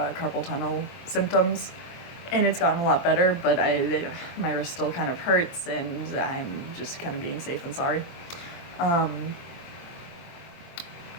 tunnel symptoms, and it's gotten a lot better, but my wrist still kind of hurts, and I'm just kind of being safe and sorry. I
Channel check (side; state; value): right; late; 23 ms